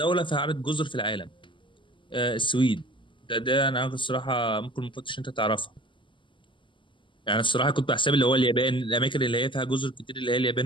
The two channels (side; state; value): right; late; 0.24 ms